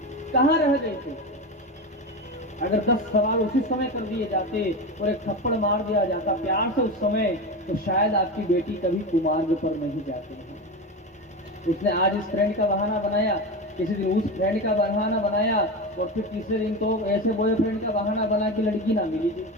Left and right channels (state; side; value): normal; both; correlation 0.21